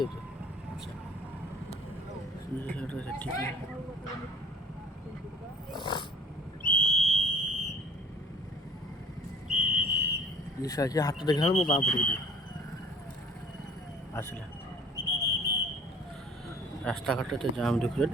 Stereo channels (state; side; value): normal; both; correlation 0.49